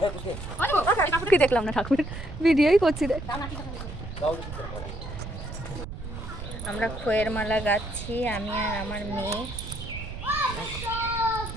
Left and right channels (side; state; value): right; noise; rumble, 9 dB below the sound